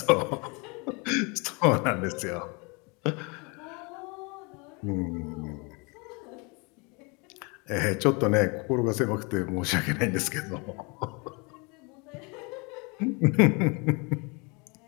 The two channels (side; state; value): right; quieter; 30.3 dB